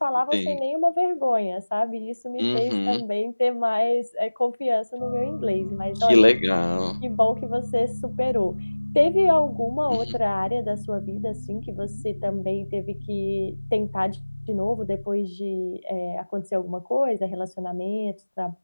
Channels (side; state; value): both; inverted; correlation -1.00